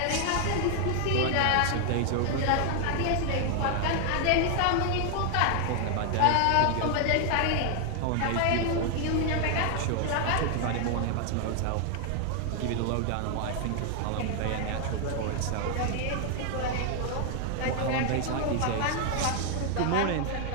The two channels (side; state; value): both; different; correlation 0.00